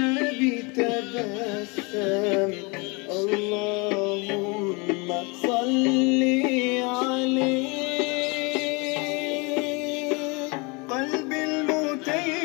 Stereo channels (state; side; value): quieter; right; 29.2 dB